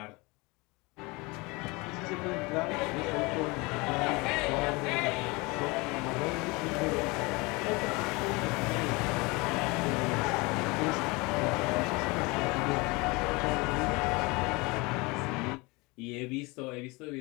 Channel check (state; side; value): quieter; right; 25.7 dB